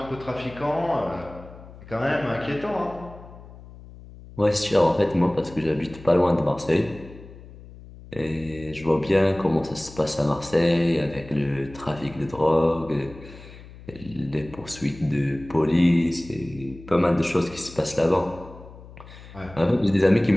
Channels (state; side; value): noise; left; hum, 18 dB below the sound